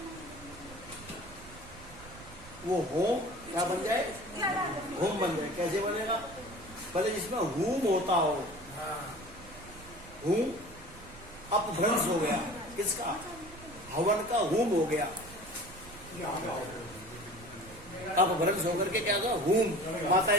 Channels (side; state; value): right; noise; rumble, 18 dB below the sound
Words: वो होम क्या बन जाए? होम बन जाए। कैसे बनेगा? पहले जिसमें होम होता हो, होम अपभ्रंश हो गया, किसका? हवन का होम हो गया, अपभ्रंश होकर के क्या हुआ? होम।